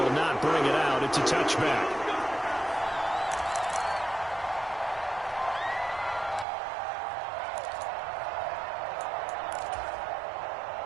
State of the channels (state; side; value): drops out; left; at 6.5 s